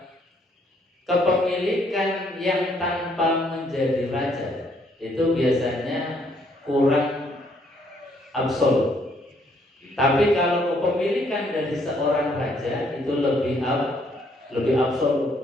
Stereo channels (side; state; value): both; normal; correlation 0.68